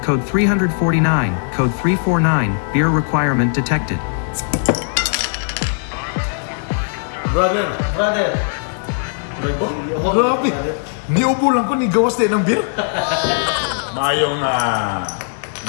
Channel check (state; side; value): silent; right; digital silence